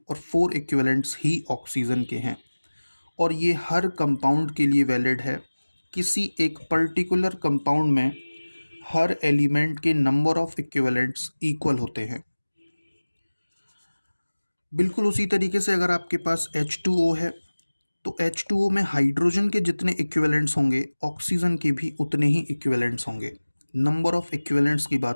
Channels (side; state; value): both; inverted; correlation -1.00